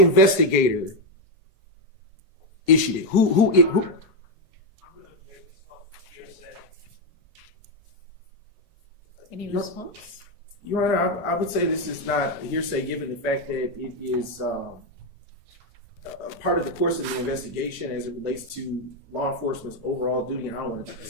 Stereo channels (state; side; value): normal; both; correlation 0.05